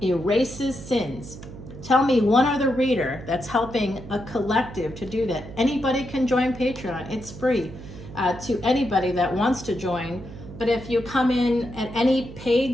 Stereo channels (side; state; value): right; noise; hum, 14 dB below the sound